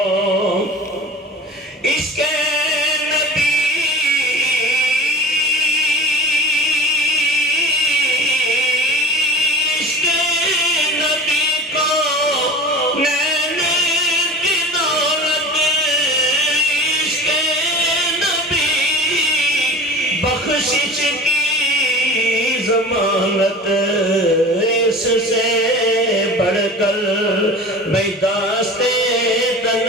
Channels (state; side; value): normal; both; correlation 0.36